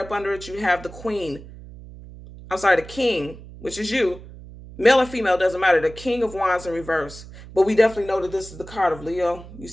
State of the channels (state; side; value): noise; right; hum, 16 dB below the sound